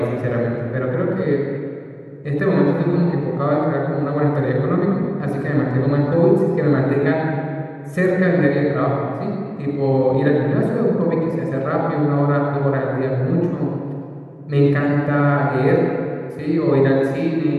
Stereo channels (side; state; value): both; identical; correlation 1.00